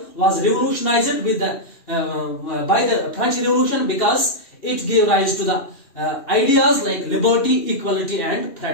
was revolutionized with by the French Revolution, because it gave rise to the ideas like liberty, equality and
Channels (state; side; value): late; right; 2.2 ms